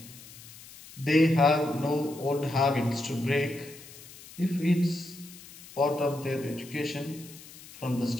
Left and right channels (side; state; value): left; noise; hiss, 18 dB below the sound